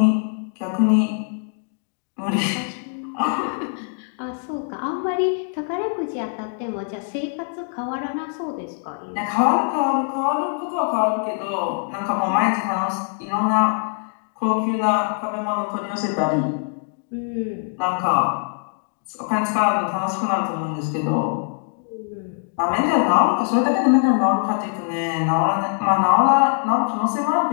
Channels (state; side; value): silent; right; 57 dB below the other